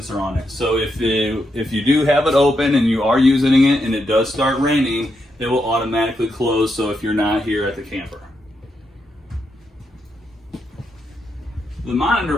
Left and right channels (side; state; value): both; normal; correlation 0.82